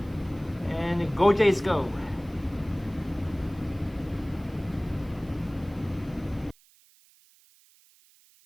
And go Jays go.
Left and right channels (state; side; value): noise; right; hiss, 29 dB below the sound